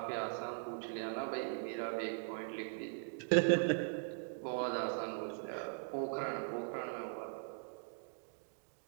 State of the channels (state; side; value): silent; left; digital silence